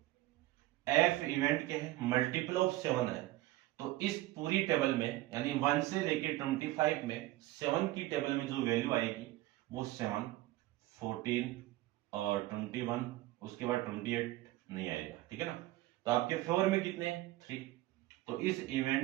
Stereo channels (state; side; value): quieter; left; 17.4 dB